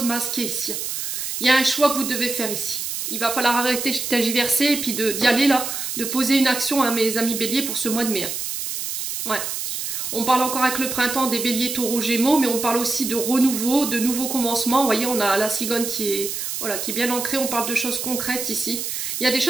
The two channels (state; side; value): noise; right; hiss, 4 dB below the sound